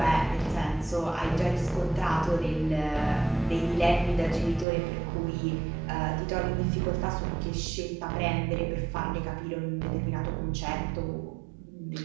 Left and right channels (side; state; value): left; drops out; at 4.7 s